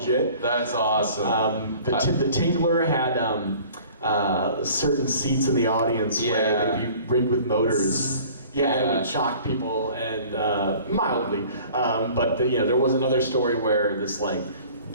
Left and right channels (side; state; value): both; inverted; correlation -0.48